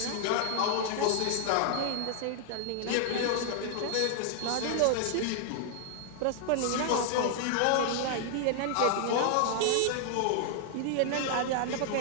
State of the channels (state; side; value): different; both; correlation 0.00